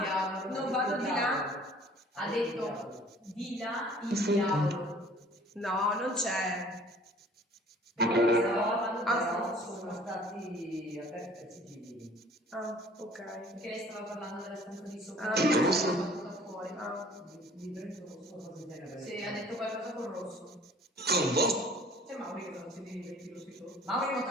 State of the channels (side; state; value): both; normal; correlation 0.52